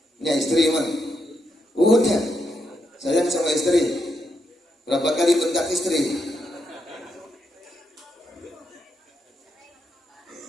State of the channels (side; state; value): both; normal; correlation 0.81